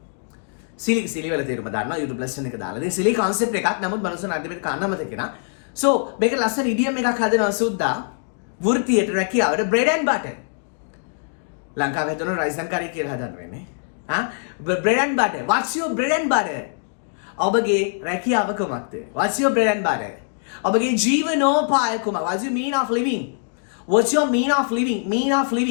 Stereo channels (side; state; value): right; silent; digital silence